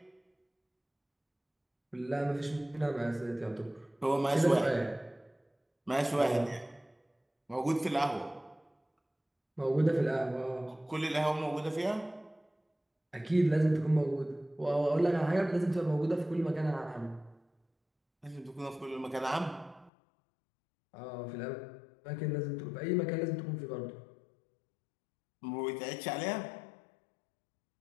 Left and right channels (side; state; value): right; drops out; at 19.9 s